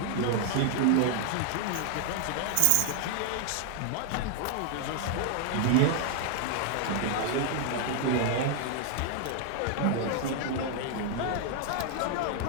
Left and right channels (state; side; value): different; both; correlation 0.00